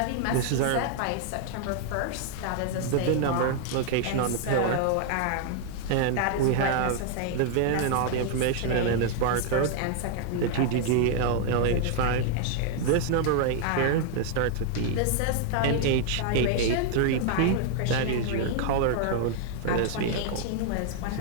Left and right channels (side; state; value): both; different; correlation 0.00